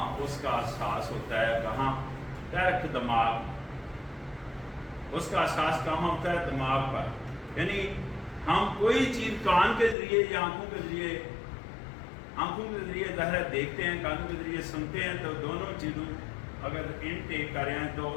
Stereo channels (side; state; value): right; drops out; at 10.0 s